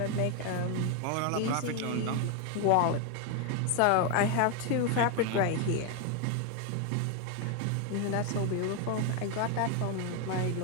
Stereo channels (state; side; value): different; both; correlation 0.01